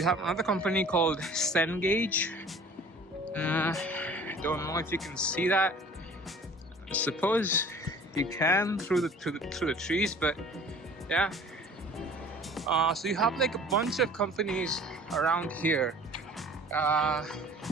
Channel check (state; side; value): normal; both; correlation 0.48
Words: have another company called Cengage. Don't know if you can see that. I suppose you can through the trees, but yeah. So you have like a bunch of companies around here.